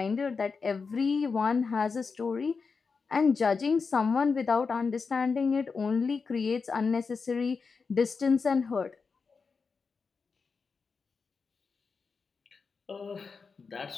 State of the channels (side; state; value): right; quieter; 5.0 dB